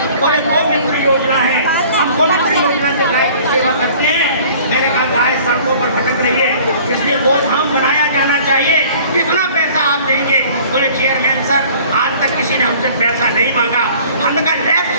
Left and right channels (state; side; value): inverted; both; correlation -0.50